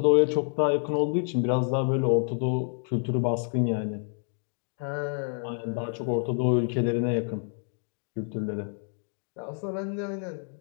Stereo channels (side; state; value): right; silent; 59 dB below the other